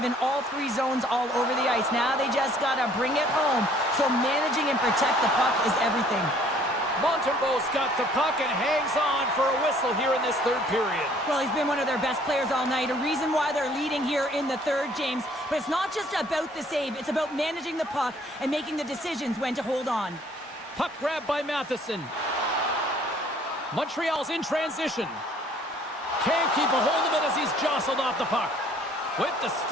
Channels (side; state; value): both; normal; correlation 0.58